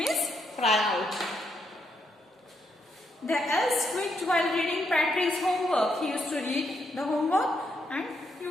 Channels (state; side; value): normal; both; correlation 0.78